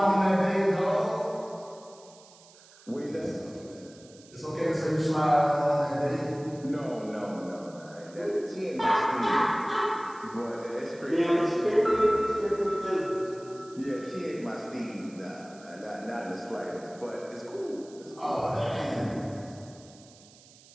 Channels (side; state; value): right; noise; hiss, 24 dB below the sound